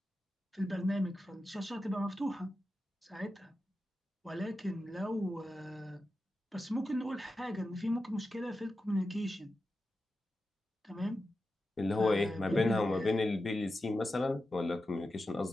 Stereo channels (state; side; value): normal; both; correlation 0.91